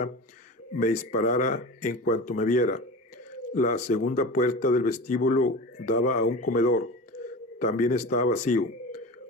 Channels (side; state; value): both; normal; correlation 0.31